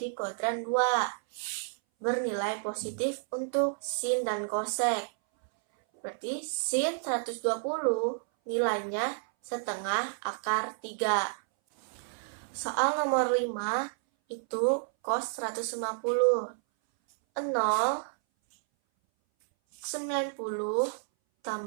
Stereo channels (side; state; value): left; silent; 57 dB below the other